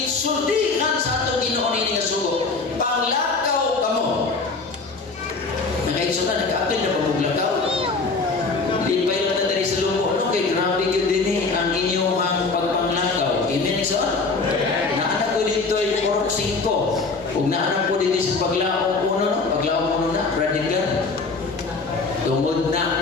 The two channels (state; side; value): quieter; right; 4.0 dB